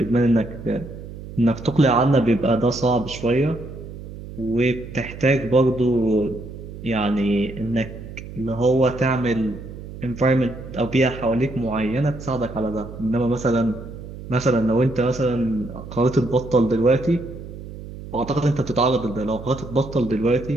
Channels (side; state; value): right; noise; hum, 12 dB below the sound